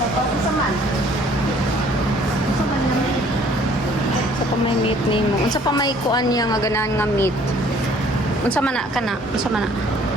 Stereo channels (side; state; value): both; normal; correlation 0.57